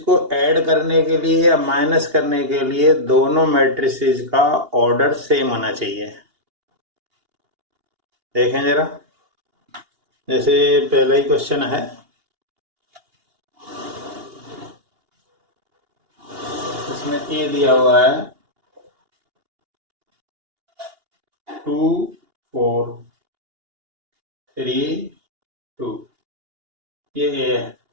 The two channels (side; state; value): left; late; 2.8 ms